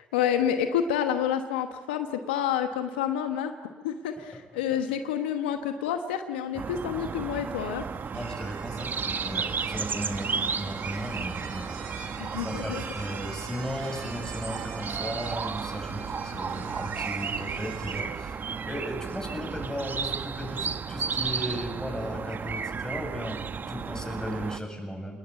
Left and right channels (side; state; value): both; normal; correlation 0.26